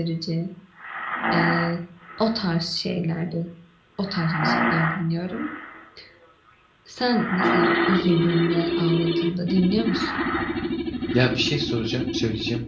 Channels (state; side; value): identical; both; correlation 1.00